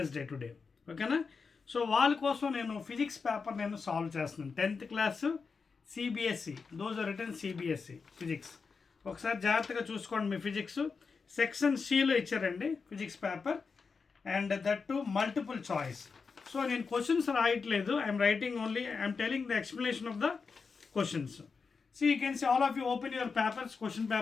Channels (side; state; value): right; quieter; 5.1 dB